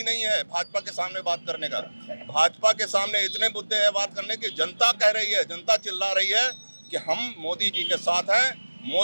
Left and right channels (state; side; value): inverted; both; correlation -1.00